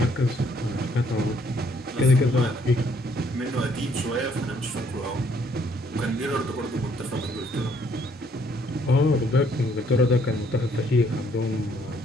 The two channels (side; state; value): both; normal; correlation 0.66